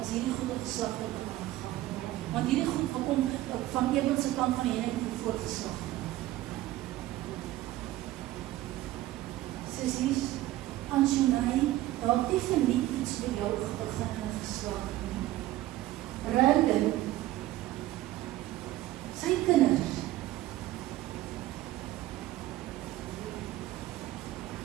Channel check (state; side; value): quieter; left; 15.6 dB